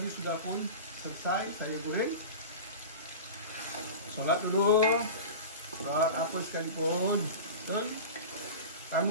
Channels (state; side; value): inverted; both; correlation -0.31